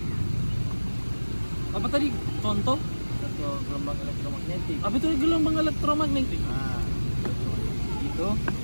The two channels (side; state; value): both; inverted; correlation -1.00